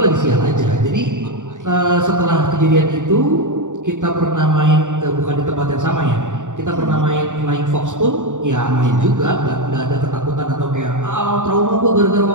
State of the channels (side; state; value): left; late; 0.86 ms